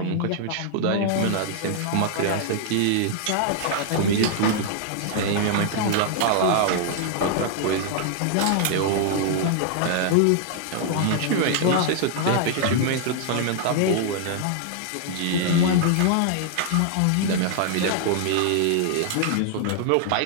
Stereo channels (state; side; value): different; both; correlation -0.01